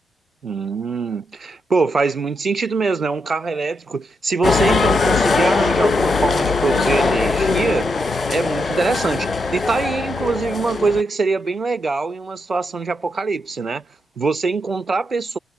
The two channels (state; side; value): normal; both; correlation 0.82